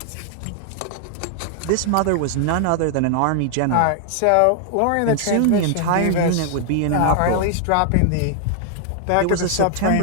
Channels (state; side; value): different; both; correlation 0.00